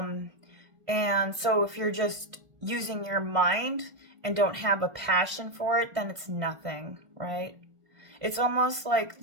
so if you're just using your mind and don't have a passion for it, then it's nothing, right? It's almost like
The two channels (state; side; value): late; left; 1.5 ms